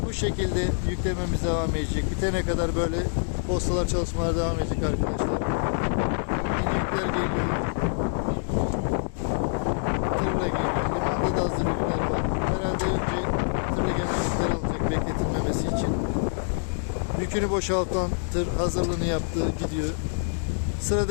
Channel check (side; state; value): right; silent; digital silence